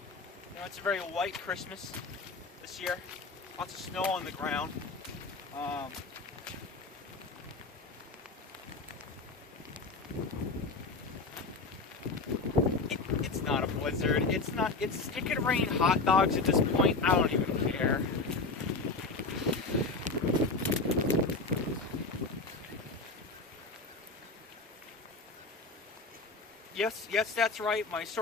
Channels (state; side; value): quieter; right; 3.7 dB